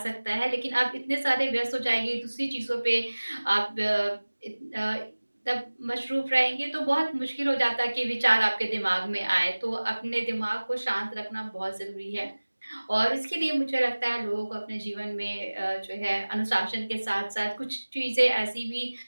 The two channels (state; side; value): inverted; both; correlation -1.00